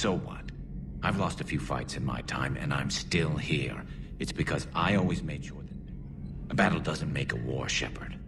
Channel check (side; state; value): both; identical; correlation 1.00